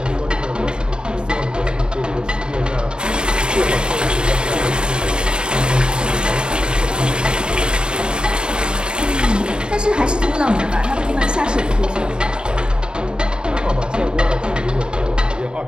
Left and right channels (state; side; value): late; left; 0.049 ms